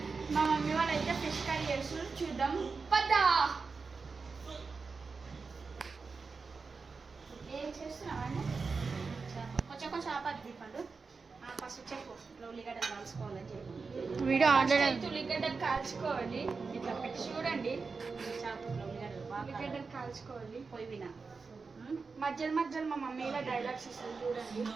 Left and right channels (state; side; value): quieter; left; 4.6 dB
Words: మా మమ్మీ వాళ్ళు అయితే ఫిష్ కర్రీ చేస్తున్నారు. చూద్దాం పద్దా. ఏం చేస్తున్నామండి? కొంచెం ఆపాది పండు. ఫస్ట్ చెప్పు, ఇట్లా ఉల్లిగడ్డలు కాల్చుకోవాలని చెప్పి వీడియో ఆన్లైన్ ఉల్లిగడ్డలు కాల్చుకోవాలి. ఇట్లా పెట్టి చూడండి. ఉల్లిగడ్డలు కాల్చుకోవాలి పొయ్యి విన మధ్యలో మా మమ్మీ ఇలా డైలాగ్స్ ఇస్తుంది చూడండి.